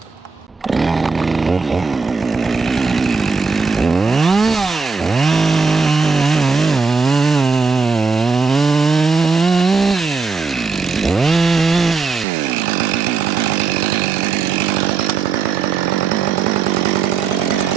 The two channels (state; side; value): quieter; left; 4.7 dB